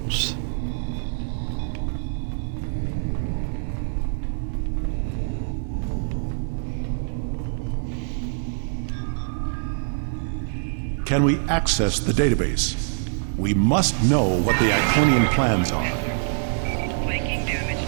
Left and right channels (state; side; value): silent; left; digital silence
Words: Can we access the database? We must know what the Iconian plans are. Flanking damage